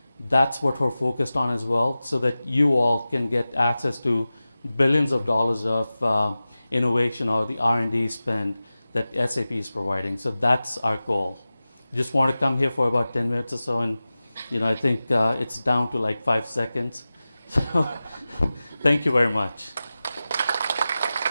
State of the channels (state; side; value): inverted; both; correlation -0.96